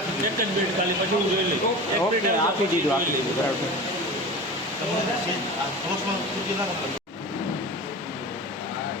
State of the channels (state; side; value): normal; both; correlation 0.32